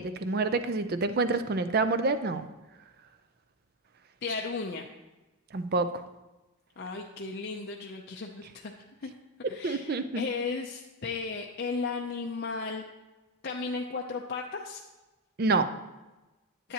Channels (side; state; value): both; normal; correlation 0.05